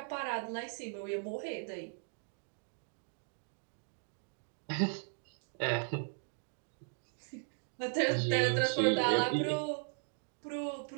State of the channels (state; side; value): silent; left; digital silence